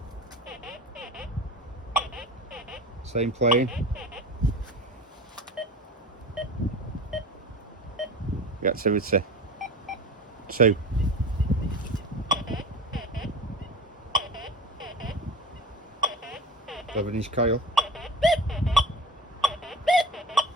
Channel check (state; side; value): normal; both; correlation 0.34